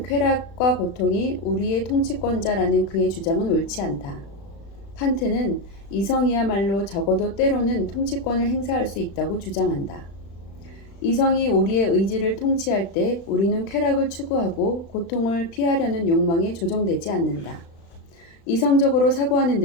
쾌락과 고통이 우리의 통치권자라는 그의 주장은 옳지 않다. 칸트는 이성이야말로 적어도 때로는 통치권을 행사할 수 있다고 주장한다. 이성이 우리의 의지를 통치할 때 우리는 쾌락을 추구하고 고통을 피하려는 욕망에 조정되지 않는다. 이성적으로 사고하는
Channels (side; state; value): right; late; 35 ms